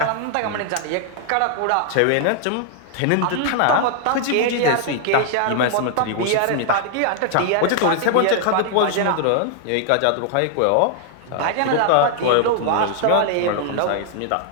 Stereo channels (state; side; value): different; both; correlation 0.00